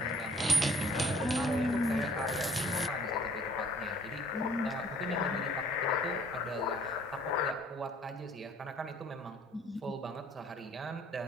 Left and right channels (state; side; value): normal; both; correlation 0.58